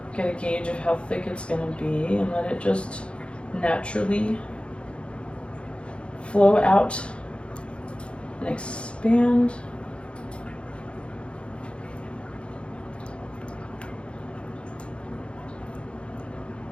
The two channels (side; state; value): right; late; 0.058 ms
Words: get a gauge of how thick it's gonna be, and let it just naturally flow out and expand.